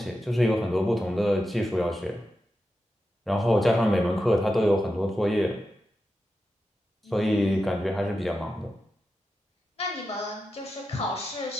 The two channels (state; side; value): normal; both; correlation 0.90